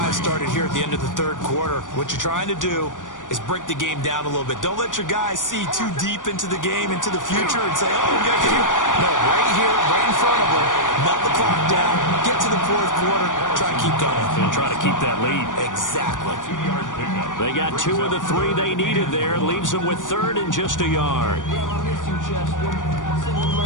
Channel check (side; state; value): right; late; 0.88 ms